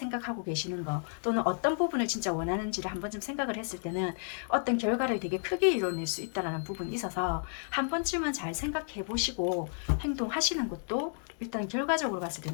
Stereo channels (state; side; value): silent; right; 56 dB below the other